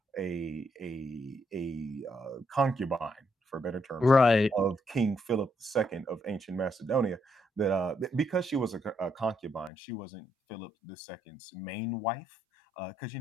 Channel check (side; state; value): right; drops out; at 9.7 s